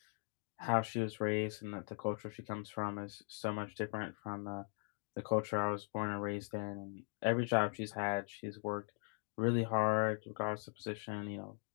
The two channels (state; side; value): silent; right; 51 dB below the other